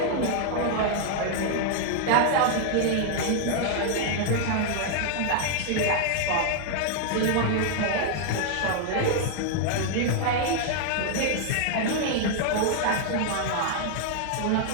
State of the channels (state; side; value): different; both; correlation 0.00